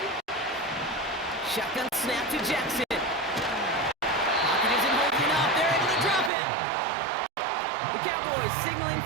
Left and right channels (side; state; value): left; drops out; at 6.3 s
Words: Shotgun snap to Jackson. Pocket isn't holding up. They're able to drop it. The Cowboys signaling